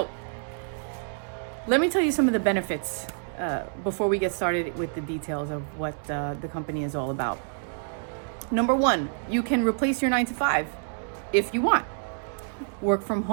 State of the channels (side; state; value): left; silent; 60 dB below the other